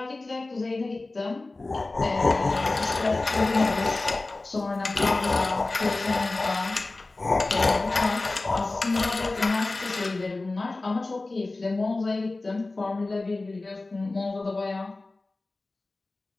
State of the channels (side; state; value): right; quieter; 3.2 dB